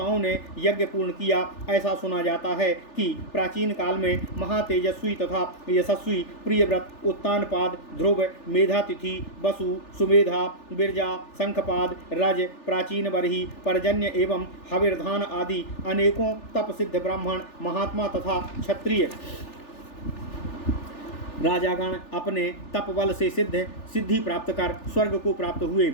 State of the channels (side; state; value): right; late; 3.4 ms